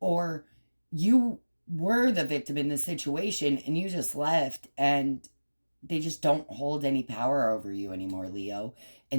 you were the victim in the situation and you just left, and they just don't hold any power over you anymore, Leo,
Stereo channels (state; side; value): inverted; both; correlation -1.00